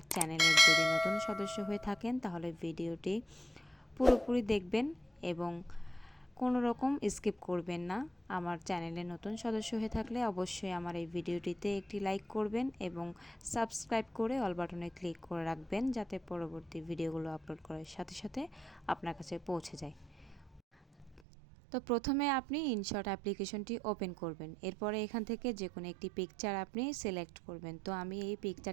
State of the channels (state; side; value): drops out; left; at 21.2 s